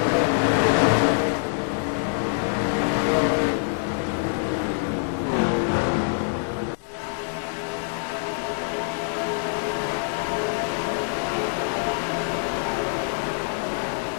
Carter's with 26th in points. Pretty tough start, but he does have 2 top 5s and 2 top 10s. But in the races that he didn't finish in the top 5, I think he's beaten out. So. Am I reading that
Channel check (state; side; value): silent; right; digital silence